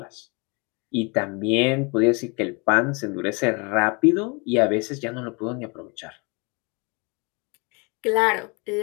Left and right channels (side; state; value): right; quieter; 30.5 dB